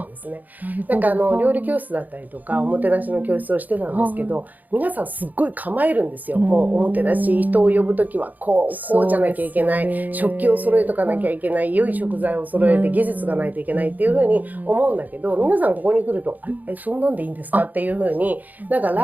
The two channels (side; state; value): left; late; 0.082 ms